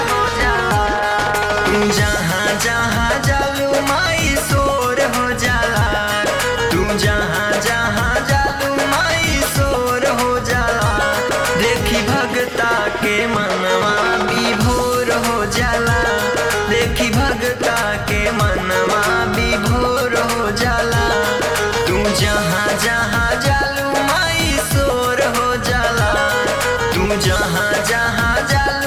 तुम जहाँ जहाँ जालू माई शोर हो जाला, तुम जहाँ जहाँ जालू माई शोर हो जाला। देखी भगता के मनवा विभोर हो जाला, देखी भगता के मनवा विभोर हो जाला। तू जहाँ जहाँ जालू माई शोर हो जाला, तू जहाँ जहाँ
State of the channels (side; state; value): both; identical; correlation 1.00